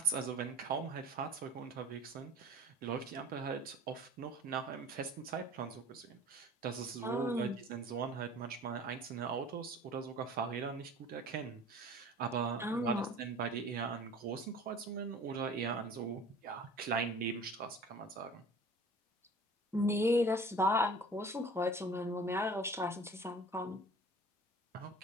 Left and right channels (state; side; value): normal; both; correlation 0.44